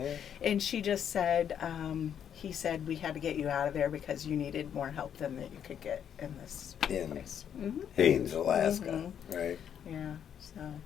And she just said, he said we had to get you out of there because you needed more help than that you could get in this In place. Mm-hmm. Haines, Alaska. Right. Yeah. So.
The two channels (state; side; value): quieter; right; 8.8 dB